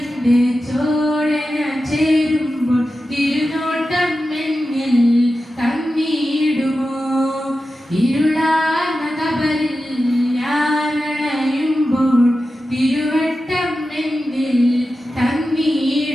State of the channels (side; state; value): both; normal; correlation 0.92